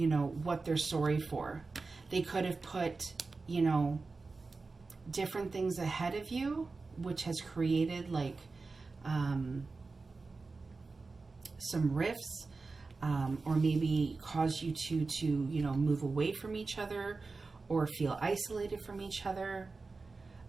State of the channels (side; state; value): left; quieter; 4.0 dB